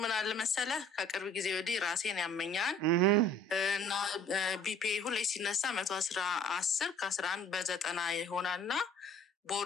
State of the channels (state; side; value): normal; both; correlation 0.53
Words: ምን አለ መሰለህ ከቅርብ ጊዜ ወዲህ ራሴን ያመኛል እና ቢፒ ሁሌ ሲነሳ 110 ከ11 በ90 ይሆናልና